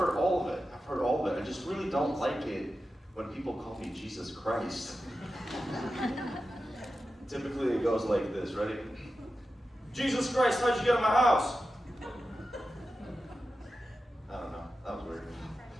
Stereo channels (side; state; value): both; normal; correlation 0.92